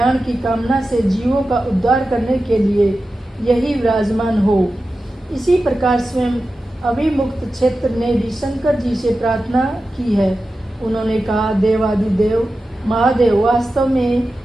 की कामना से जीवों का उद्धार करने के लिए यही विराजमान हो। इसी प्रकार स्वयं अभिमुक्त क्षेत्र ने भी शंकर जी से प्रार्थना की है। उन्होंने कहा, देवादिदेव महादेव, वास्तव में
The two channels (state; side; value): normal; both; correlation 0.93